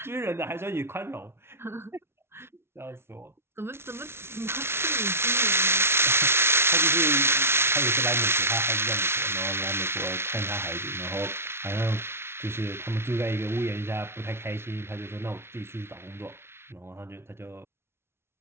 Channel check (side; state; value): left; late; 0.12 ms